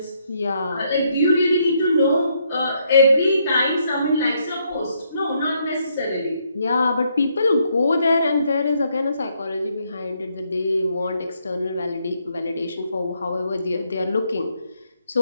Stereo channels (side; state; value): both; inverted; correlation -0.74